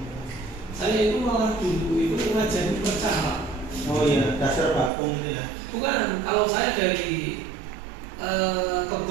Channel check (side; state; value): left; drops out; at 4.9 s